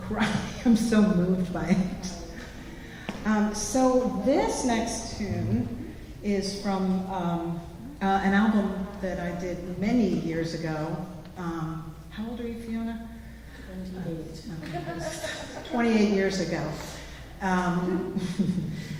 cry. I'm so moved by it. So this next tune is from an album that I did many years ago. How old are you, Fiona? 28 years ago.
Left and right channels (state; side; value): identical; both; correlation 1.00